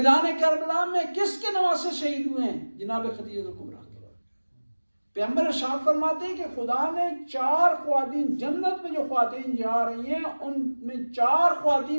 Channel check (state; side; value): inverted; both; correlation -1.00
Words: کربلا میں کس کے نواسے شہید ہوئے ہیں؟ جناب خدیجہ کبریٰ. پیغمبر ارشاد فرماتے ہیں کہ خدا نے 4 خواتین جنت میں جو خواتین جا رہی ہیں ان میں 4